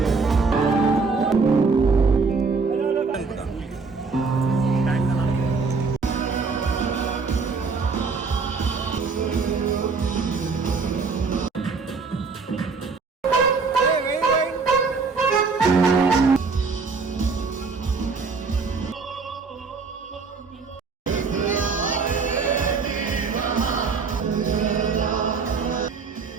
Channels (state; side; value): quieter; left; 4.7 dB